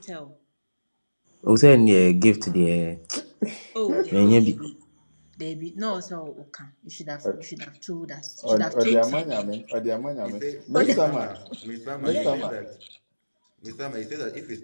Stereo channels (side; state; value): both; inverted; correlation -1.00